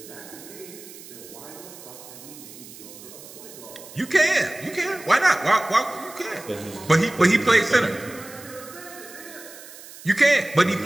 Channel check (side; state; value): right; noise; hiss, 17 dB below the sound